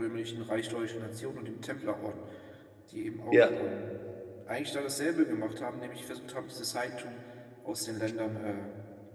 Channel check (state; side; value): identical; both; correlation 1.00